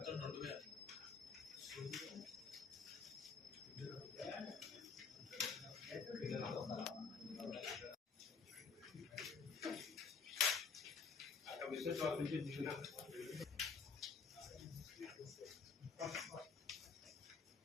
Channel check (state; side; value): quieter; right; 5.3 dB